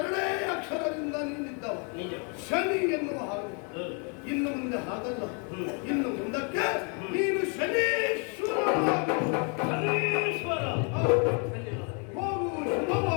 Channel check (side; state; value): right; quieter; 37.4 dB